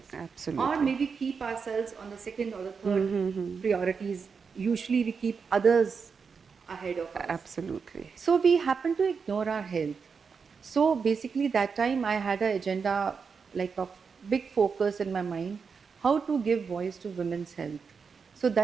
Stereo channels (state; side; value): quieter; left; 5.6 dB